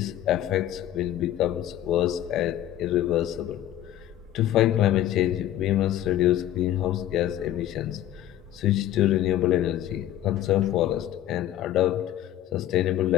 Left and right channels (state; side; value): quieter; right; 12.5 dB